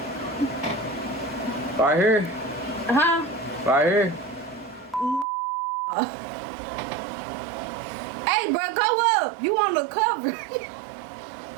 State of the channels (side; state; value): left; drops out; at 5.2 s